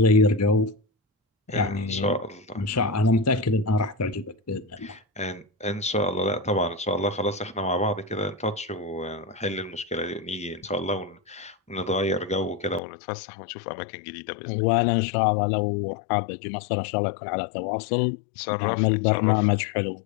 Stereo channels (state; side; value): drops out; right; at 12.8 s